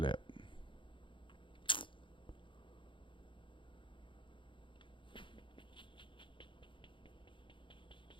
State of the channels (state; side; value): late; right; 0.24 ms